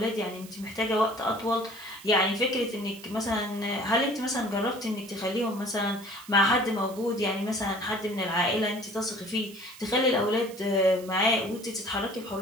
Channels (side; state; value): right; noise; hiss, 19 dB below the sound